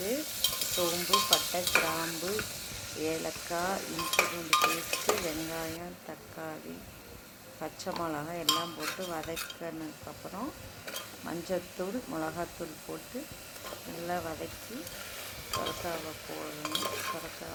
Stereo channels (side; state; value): both; identical; correlation 1.00